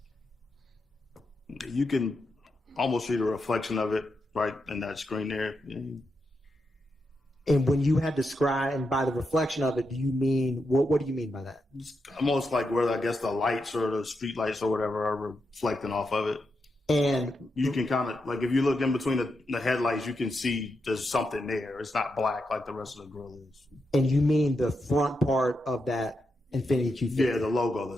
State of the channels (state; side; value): normal; both; correlation 0.85